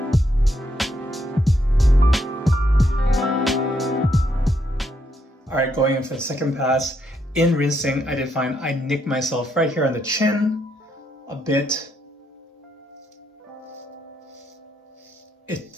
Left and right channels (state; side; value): normal; both; correlation 0.77